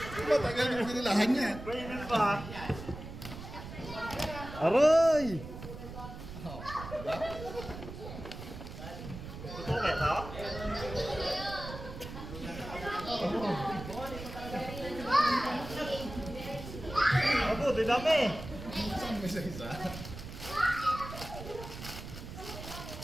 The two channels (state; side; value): noise; right; rumble, 11 dB below the sound